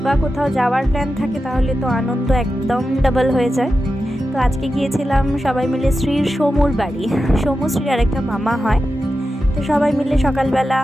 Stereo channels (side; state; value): both; normal; correlation 0.91